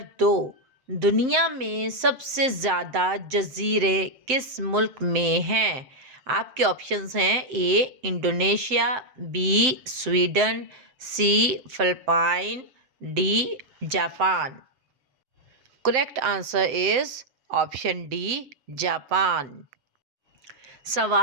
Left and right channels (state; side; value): late; left; 7.7 ms